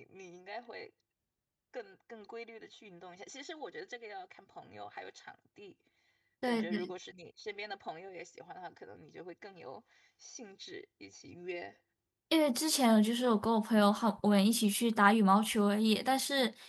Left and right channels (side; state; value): both; identical; correlation 1.00